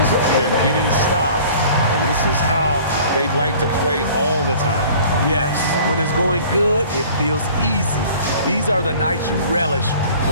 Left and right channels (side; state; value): both; inverted; correlation -0.48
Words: They're getting stops. And this is how they'd like to play all the time. Yes, when it's going good, it feels easy. These are the nights you relish,